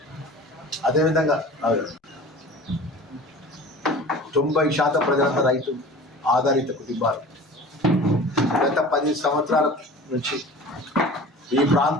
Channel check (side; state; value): both; normal; correlation 0.40